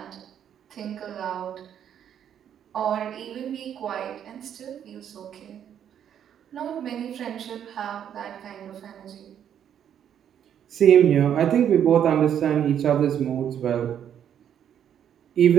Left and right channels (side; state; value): left; quieter; 9.3 dB